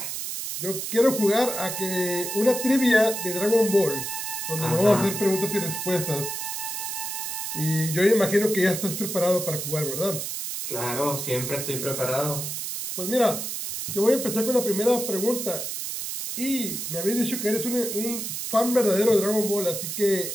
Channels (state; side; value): noise; right; hiss, 5 dB below the sound